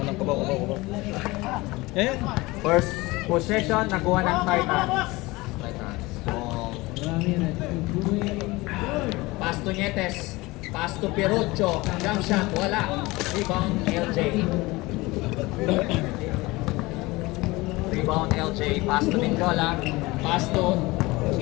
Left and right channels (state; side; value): quieter; right; 21.7 dB